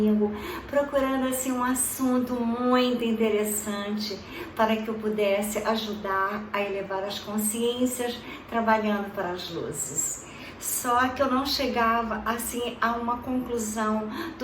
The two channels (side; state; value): both; identical; correlation 1.00